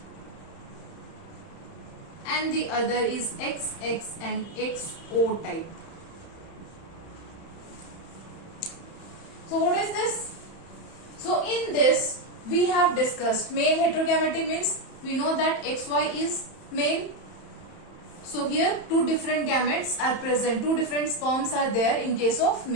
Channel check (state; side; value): late; right; 31 ms